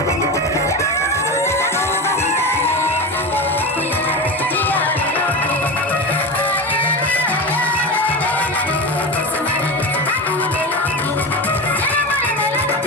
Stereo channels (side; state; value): both; normal; correlation 0.23